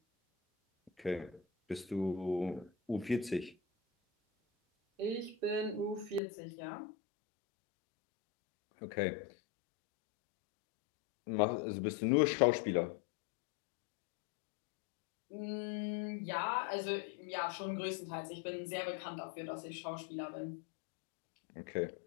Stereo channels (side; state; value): right; drops out; at 6.2 s